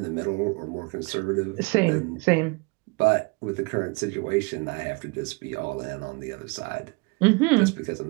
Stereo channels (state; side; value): quieter; left; 30.0 dB